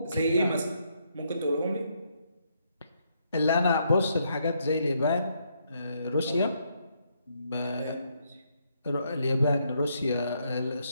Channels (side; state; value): both; inverted; correlation -0.75